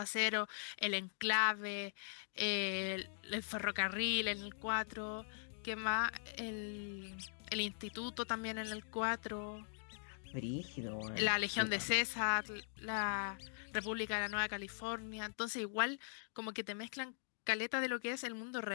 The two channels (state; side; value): silent; right; digital silence